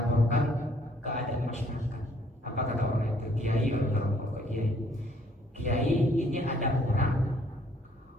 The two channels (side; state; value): both; normal; correlation 0.63